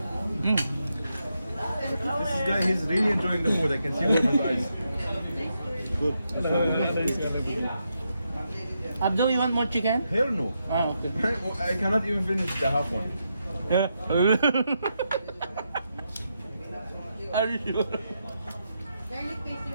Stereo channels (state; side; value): inverted; both; correlation -0.83